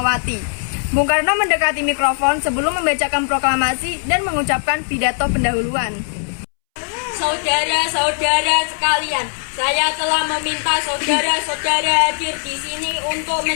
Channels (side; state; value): right; silent; 66 dB below the other